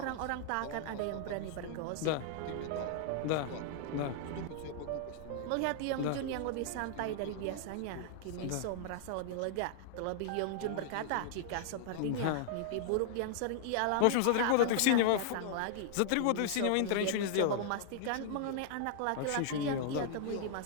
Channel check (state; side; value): different; both; correlation -0.01